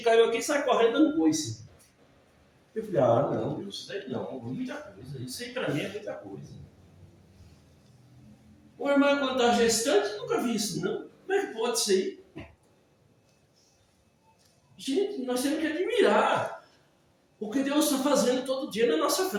caiu aqui e sai correndo dando coice. Eu falei, não, isso daí não, muita coisa. Isso aí para mim é muita coisa. O irmão, quando está gestante, nunca vi isso, não. Como é que pode ser? Gente, nós temos que admirar o que Deus está fazendo todo dia na nossa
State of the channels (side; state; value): both; identical; correlation 1.00